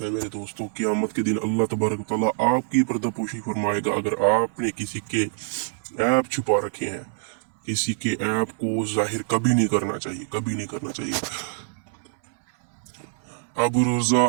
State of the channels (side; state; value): left; silent; 62 dB below the other